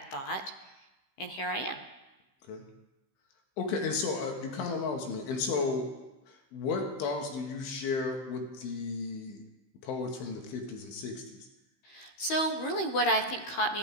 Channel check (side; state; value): right; late; 15 ms